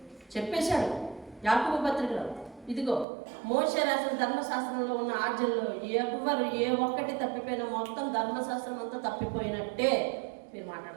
చెప్పేశాడు యాకోబు పత్రికలో, ఇదిగో మోషే రాసిన ధర్మశాస్త్రంలో ఉన్న ఆజ్ఞల్లో ఎవరు ఏ ఒక్కటి తప్పిపోయినా మొత్తం ధర్మశాస్త్రం అంతా తప్పిపోయినట్టే. మీరు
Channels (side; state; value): left; drops out; at 3.1 s